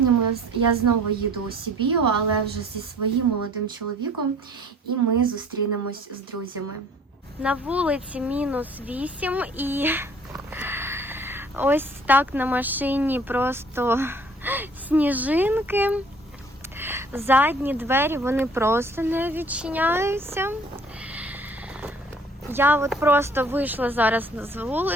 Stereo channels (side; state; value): both; normal; correlation 0.54